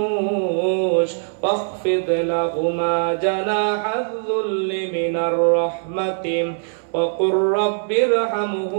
ওয়াখফিদ লাহুমা জানাহায-যুল্লি মিনার রাহমাতি ওয়া কুর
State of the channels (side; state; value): left; silent; 65 dB below the other